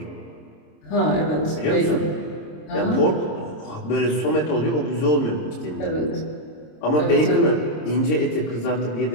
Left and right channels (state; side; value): late; right; 26 ms